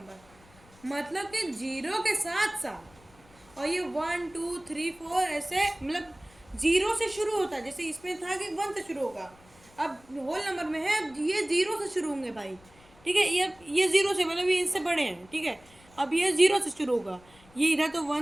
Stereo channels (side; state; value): left; noise; rumble, 27 dB below the sound